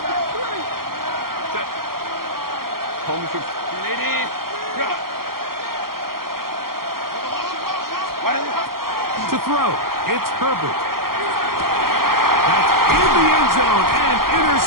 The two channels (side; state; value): left; late; 0.92 ms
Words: To throw, it's Herbert. That's in the end zone and